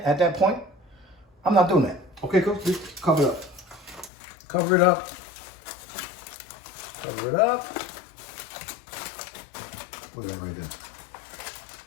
at that point. I'm not doing that. Okay, cooks? Just cover it up. Cover it up. Cover it up. Look at that right there.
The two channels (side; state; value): right; drops out; at 4.1 s